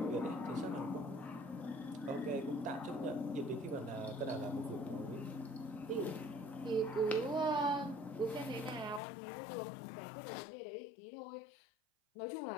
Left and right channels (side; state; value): right; drops out; at 9.0 s